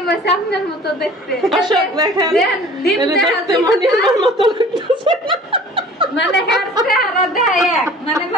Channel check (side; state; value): both; normal; correlation 0.47